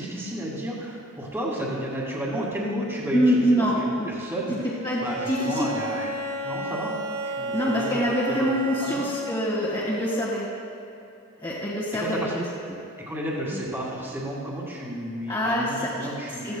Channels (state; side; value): normal; both; correlation 0.50